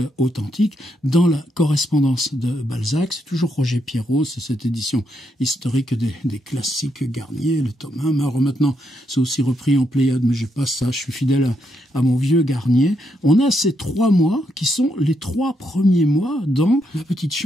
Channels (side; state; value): both; normal; correlation 0.79